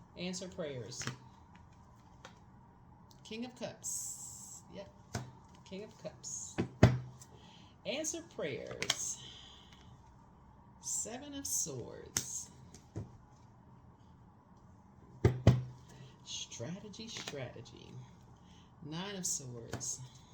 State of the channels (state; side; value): identical; both; correlation 1.00